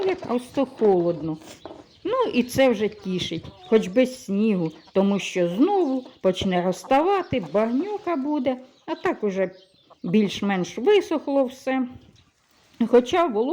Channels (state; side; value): identical; both; correlation 1.00